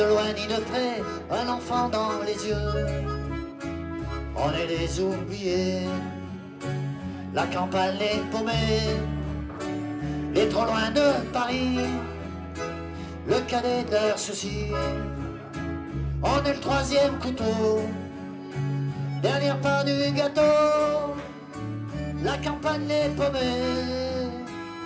loin ni de près, un enfant dans les yeux. On est les oubliés, la campagne les paumés, les trop loin de Paris, le cadet de leurs soucis. On est le 3e couteau, dernière part du gâteau, la campagne les paumés,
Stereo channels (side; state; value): both; identical; correlation 1.00